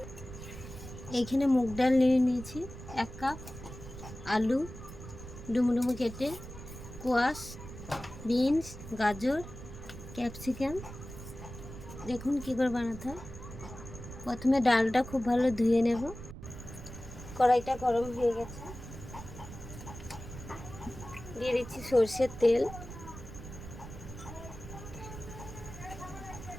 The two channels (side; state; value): right; noise; rumble, 12 dB below the sound